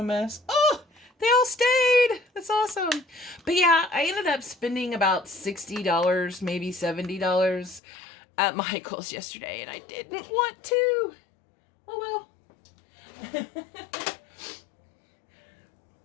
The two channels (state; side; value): drops out; right; at 7.8 s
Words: mess. Oh, they all stayed. That's awesome. But yeah, I ended up spending about $60, maybe $70 at Michael's yesterday, and I didn't want to. Oh well.